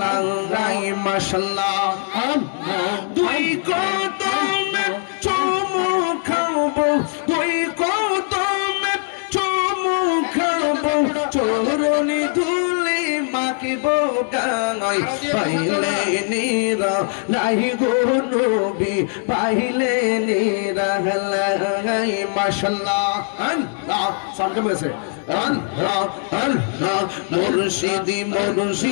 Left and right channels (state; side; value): silent; right; 55 dB below the other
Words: লাই মাশাআল্লাহ দুই কদমে চুমু খাবো দুই কদমে চুমু খাবো চরণে ধুলি মাখিব গায় পাইলে নীরা লাহি গো নবী পাইলে নীরা লাই মাশাআল্লাহ আল্লাহ সামনে বসে আল্লাহ আল্লাহ মুর্শিদি